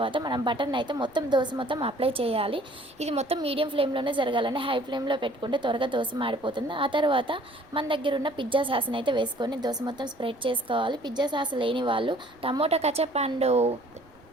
మనం బటర్ని అయితే దోశ మొత్తం అప్లై చేయాలి. ఇది మొత్తం మీడియం ఫ్లేమ్లోనే జరగాలండి. హై ఫ్లేమ్లో పెట్టుకుంటే త్వరగా దోశ మాడిపోతుంది. ఆ తర్వాత మన దగ్గర ఉన్న పిజ్జా సాస్ని అయితే వేసుకొని దోశ మొత్తం స్ప్రెడ్ చేసుకోవాలి. పిజ్జా సాస్ లేని వాళ్ళు tomato ketchup and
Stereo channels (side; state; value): right; noise; rumble, 29 dB below the sound